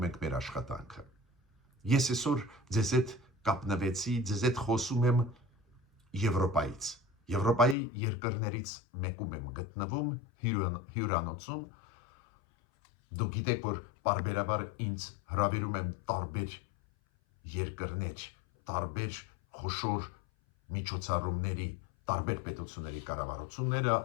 ենք մեր աշխատանքը։ Ես այսօր ձեզ հետ կապնվեցի, ձեզ հետ խոսում եմ Եվրոպայից։ Եվրոպայի երկրներից մեկում եմ գտնվում հյուրանոցում։ Դուք գիտեք, որ պարբերաբար ինձ հրավիրում են տարբեր երկրներ, տարբեր խոշոր միջոցառումների, տարբեր պետությունների կառավարությունները,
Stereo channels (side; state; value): right; drops out; at 7.8 s